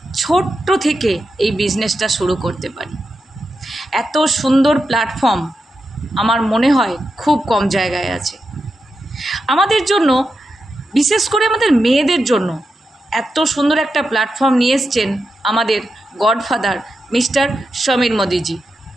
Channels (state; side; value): normal; both; correlation 0.88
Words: ছোট্ট থেকে এই বিজনেসটা শুরু করতে পারি। এত সুন্দর প্ল্যাটফর্ম আমার মনে হয় খুব কম জায়গায় আছে। আমাদের জন্য, বিশেষ করে আমাদের মেয়েদের জন্য এত সুন্দর একটা প্ল্যাটফর্ম নিয়ে এসছেন আমাদের গডফাদার মিস্টার সমীর মোদিজি।